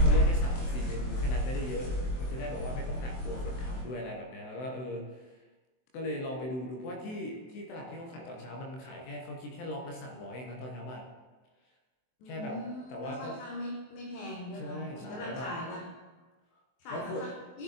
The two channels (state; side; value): late; right; 23 ms